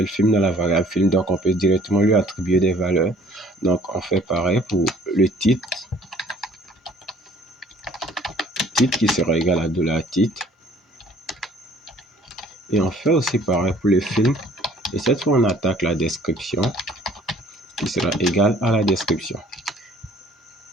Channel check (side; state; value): both; normal; correlation 0.56